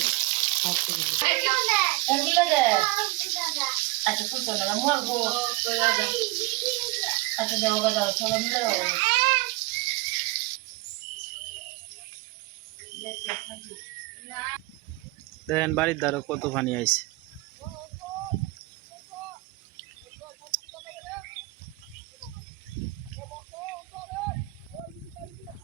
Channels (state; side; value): quieter; left; 22.3 dB